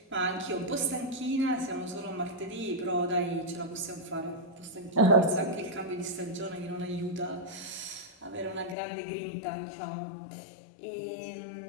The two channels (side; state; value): right; drops out; at 8.8 s